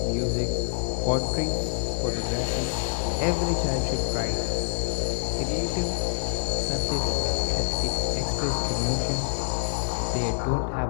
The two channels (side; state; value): right; silent; digital silence